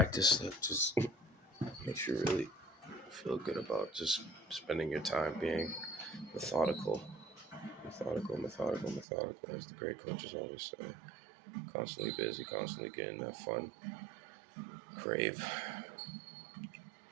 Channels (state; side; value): drops out; left; at 9.1 s